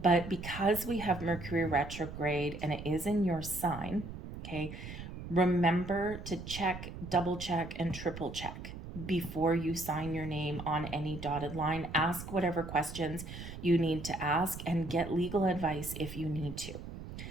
because we have Mercury retrograde and it is in your sign, okay, remember to check, double check, and triple check before you sign your name on any dotted line. Ask whatever questions you need to ask, and get legal advice if you need to.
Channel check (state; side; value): noise; right; rumble, 10 dB below the sound